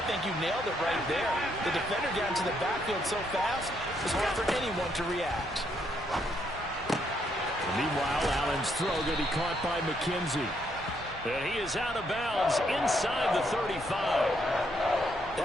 think you nailed it right there. The defender got into the backfield so fast, it's hard for anyone to react. Meanwhile, Allen's throw going to be caught by McKenzie. And he is out of bounds inside the 35.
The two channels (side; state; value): both; normal; correlation 0.74